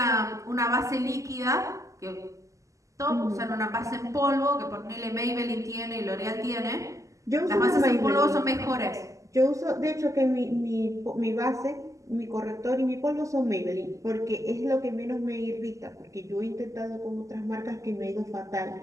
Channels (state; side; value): late; left; 0.16 ms